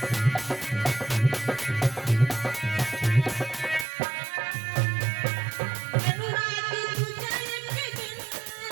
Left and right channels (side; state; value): left; drops out; at 3.9 s